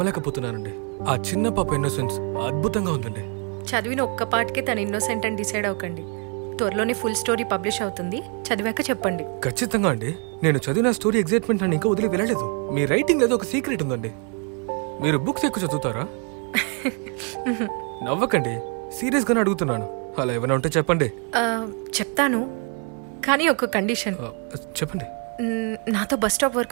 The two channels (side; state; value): left; quieter; 37.3 dB